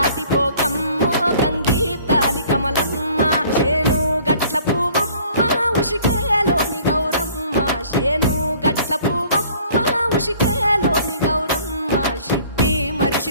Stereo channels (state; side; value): inverted; both; correlation -0.54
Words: గంగీప్తాలి కమలమ్మ శేను గట్ల పువ్వమ్మ ఉషికేలోని గౌరమ్మ శేను గట్ల పువ్వమ్మ ఉషికేలోని గౌరమ్మ షిప్పి